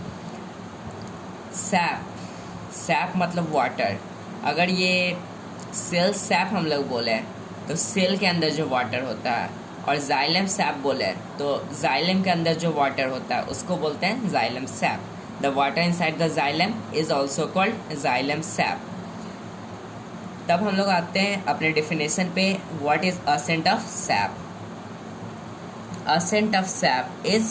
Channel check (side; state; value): both; identical; correlation 1.00